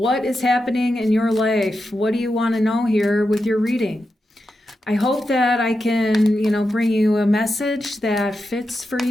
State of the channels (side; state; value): both; normal; correlation 0.88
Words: is happening in your life? What do you want to know here with your reading? I hope that I can, bring you a message that fits for